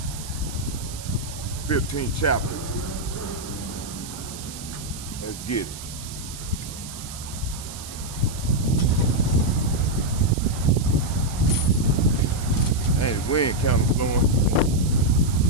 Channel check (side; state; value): right; noise; hiss, 12 dB below the sound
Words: 15th chapter. Let's get it. Hey, the wind kind of blowing. Let